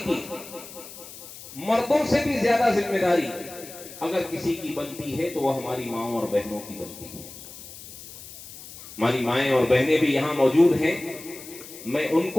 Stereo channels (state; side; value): noise; left; hiss, 15 dB below the sound